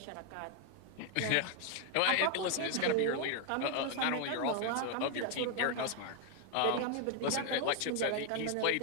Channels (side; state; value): both; different; correlation 0.01